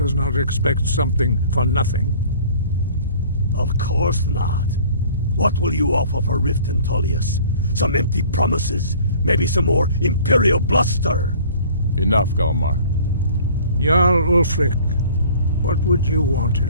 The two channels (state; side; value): inverted; both; correlation -0.49